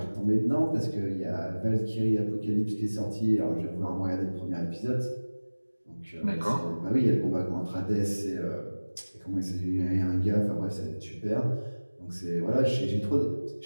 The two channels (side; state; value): both; inverted; correlation -1.00